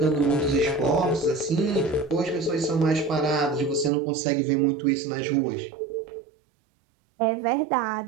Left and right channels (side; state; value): left; drops out; at 3.9 s